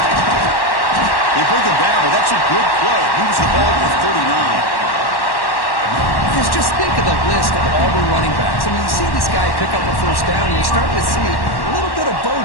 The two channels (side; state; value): right; late; 1.1 ms